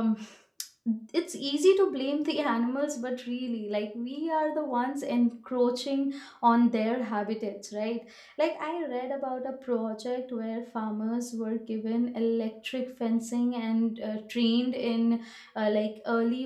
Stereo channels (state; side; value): identical; both; correlation 1.00